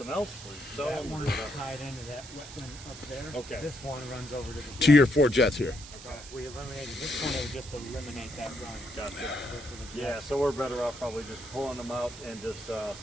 else. That one is tied into that wetland up there. Okay. This one runs over to the To your 4 jets here. Okay. If we eliminated this one, it would just eliminate that run. Gotcha. Yeah, so we're better off probably just pulling them out and just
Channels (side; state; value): right; noise; hiss, 15 dB below the sound